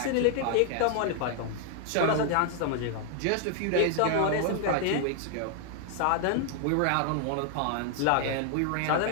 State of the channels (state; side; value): different; both; correlation 0.00